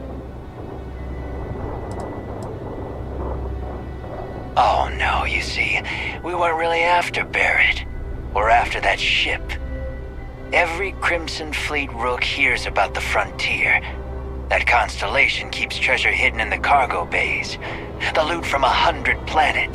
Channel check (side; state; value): both; identical; correlation 1.00